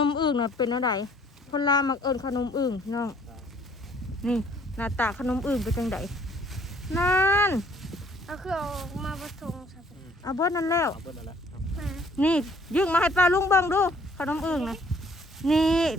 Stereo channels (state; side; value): normal; both; correlation 0.61